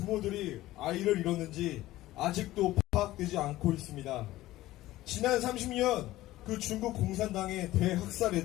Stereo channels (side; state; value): right; quieter; 16.2 dB